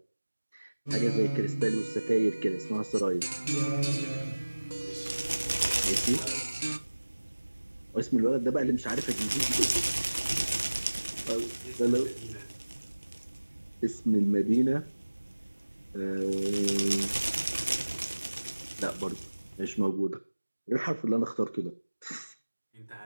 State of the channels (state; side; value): inverted; both; correlation -1.00